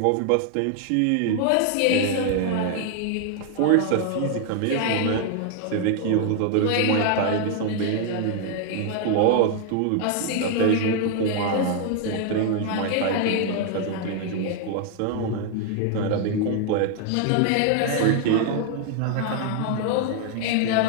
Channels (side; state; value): both; different; correlation 0.00